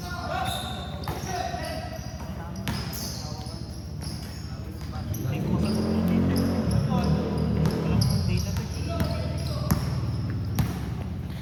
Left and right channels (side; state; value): both; identical; correlation 1.00